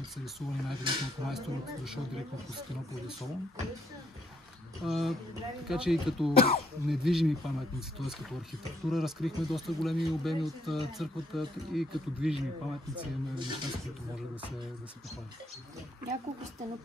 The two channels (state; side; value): normal; both; correlation 0.72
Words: са рисувани най-вероятно от майстор, дошъл директно от Константинопол и Солун. Така че и като недвижими паметници, т.е. като архитектура, разкрихме доста големи обеми от църквата и като движими паметници имаме неща, с които може да се похвалят. Няколко